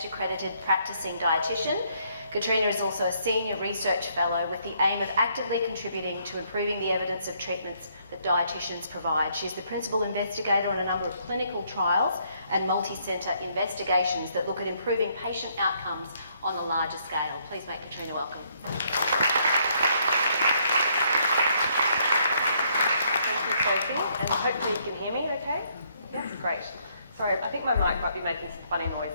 accredited practicing dietitian, Katrina is also a senior research fellow with the aim of actively contributing to improving the evidence of treatments that dietitians provide. She's the principal investigator on a number of clinical trials and multi-centre investigations that look at improving patient outcomes on a larger scale. Please make Katrina welcome. Thank you, Sophie, and hopefully you can hear me okay? That's great. Sorry, I think my mic might be making some funny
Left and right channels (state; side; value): inverted; both; correlation -0.70